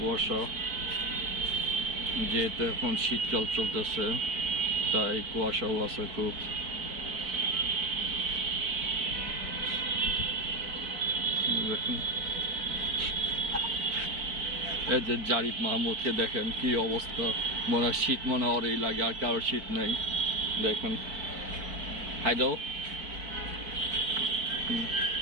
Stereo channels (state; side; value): late; left; 4.5 ms